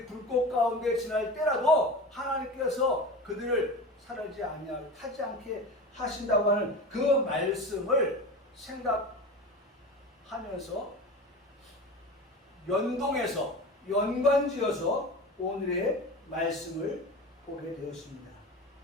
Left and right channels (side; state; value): both; normal; correlation 0.30